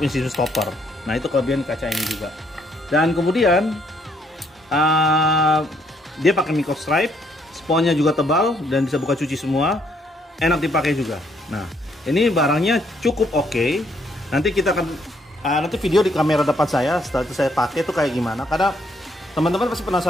sistem stopper. Nah, itu kelebihan kaca ini juga. Dan kemudian dia pakai micro stripe, sponnya juga tebal dan bisa buka cuci semua. Enak dipakai juga. Nah, ini barangnya cukup oke. Nanti kita akan nanti video di kamera depan saya setelah itu saya pakai itu kayak gimana. Karena teman-teman pasti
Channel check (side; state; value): both; normal; correlation 0.70